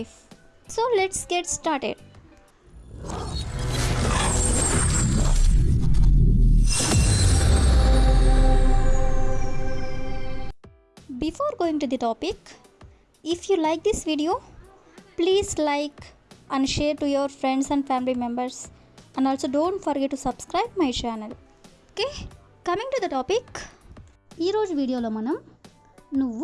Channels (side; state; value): both; identical; correlation 1.00